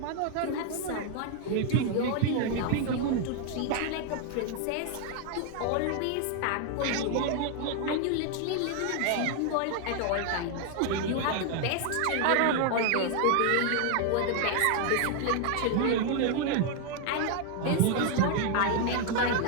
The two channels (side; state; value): both; different; correlation 0.00